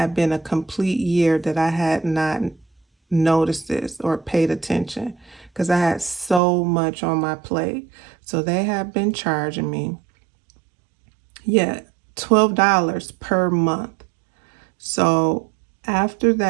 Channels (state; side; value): drops out; left; at 6.4 s